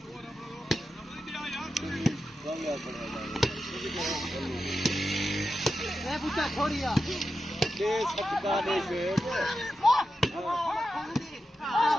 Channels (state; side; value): normal; both; correlation 0.90